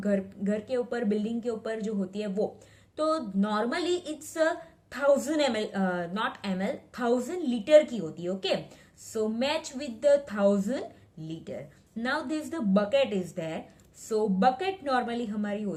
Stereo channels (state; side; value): identical; both; correlation 1.00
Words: के ऊपर बिल्डिंग के ऊपर जो होती है वो, तो normally it's 1000 ml, not ml, 1000 litre की होती है. Okay, so match with the 1000 litre. Now this the bucket is there. So bucket normally हमारी